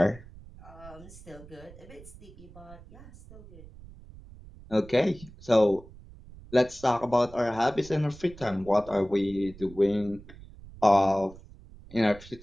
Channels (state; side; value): noise; right; rumble, 19 dB below the sound